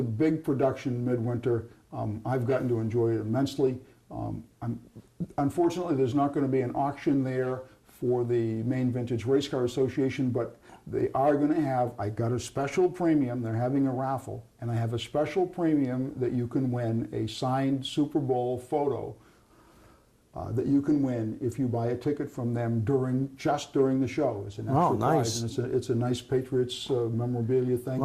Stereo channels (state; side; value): identical; both; correlation 1.00